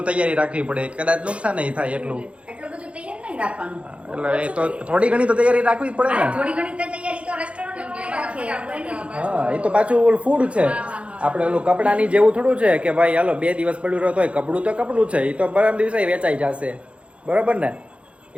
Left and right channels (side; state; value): left; late; 0.061 ms